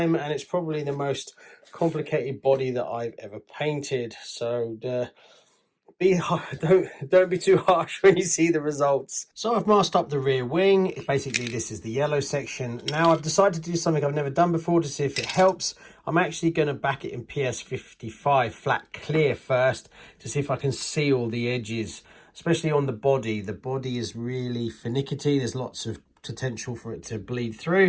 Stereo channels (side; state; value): both; identical; correlation 1.00